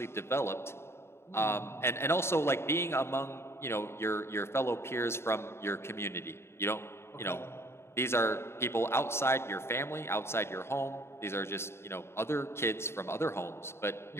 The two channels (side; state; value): right; late; 0.12 ms